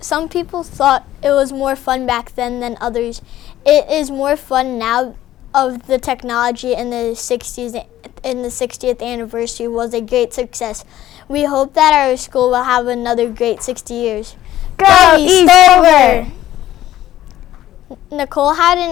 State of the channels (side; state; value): right; quieter; 13.4 dB